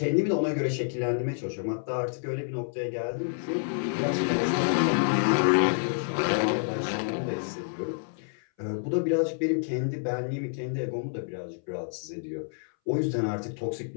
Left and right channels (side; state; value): right; silent; 59 dB below the other